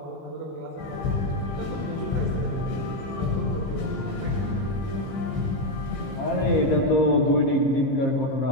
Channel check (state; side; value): late; right; 15 ms